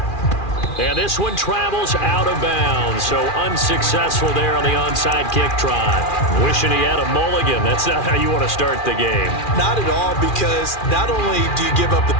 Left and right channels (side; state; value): right; late; 2.4 ms